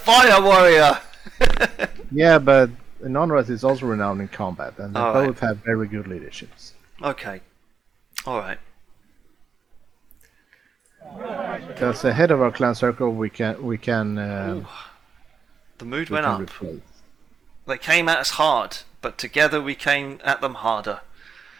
warrior! Yeah, but Nonras is also renowned in combat, and they both have very good leaderships. Okay. Alright. Because the head of our clan circle, we can. The mood went up. They came at us hard, but together we came at them harder.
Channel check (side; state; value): left; quieter; 6.0 dB